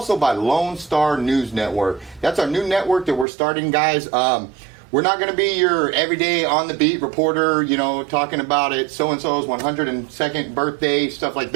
by Lone Star News Network. That's our new network that we're starting, guys. We're not going to be your everyday on-the-beat reporter, you know, talking about it, so-and-so's 102nd birthday, stuff like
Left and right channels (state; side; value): drops out; left; at 3.2 s